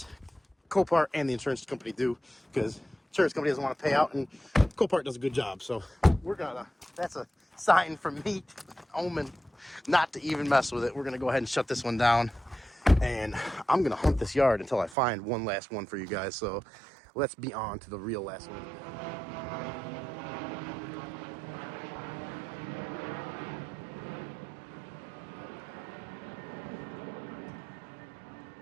Copart and the insurance company do, because insurance company doesn't want to pay out, and Copart does a good job. So that's a sign from me, omen, not to even mess with it. We're going to go ahead and shut this one down. And I'm going to hunt this yard until I find one last one for you guys. So let's be on to the real last one.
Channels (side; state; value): left; drops out; at 15.0 s